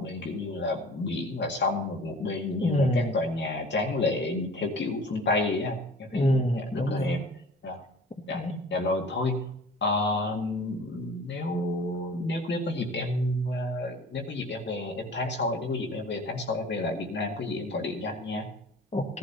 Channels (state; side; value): normal; both; correlation 0.45